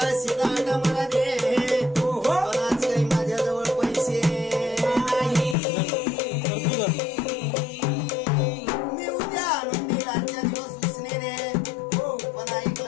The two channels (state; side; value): drops out; right; at 5.6 s